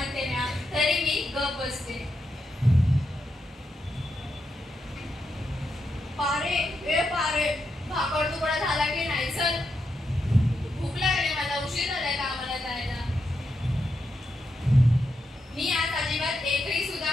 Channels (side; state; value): both; normal; correlation 0.84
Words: ना, तरी मी गप बसते। पारे, ए पारे, भाकर तुकडा झाला की नाही? चल, भूक लागली मला, उशीर झालाय कामाला जायला। मी आज अजिबात एकही सुद्धा